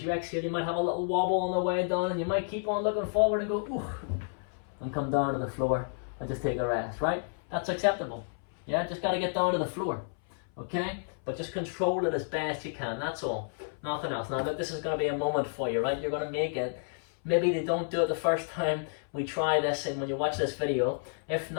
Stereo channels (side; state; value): right; silent; 57 dB below the other